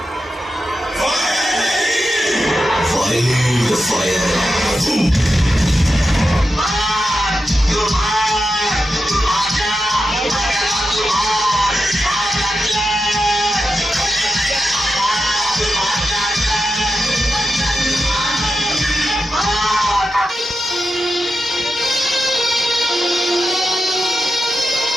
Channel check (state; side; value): normal; both; correlation 0.89